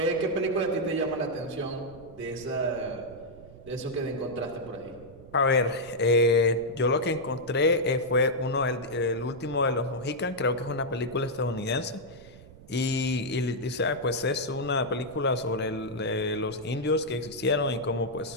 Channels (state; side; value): noise; right; rumble, 20 dB below the sound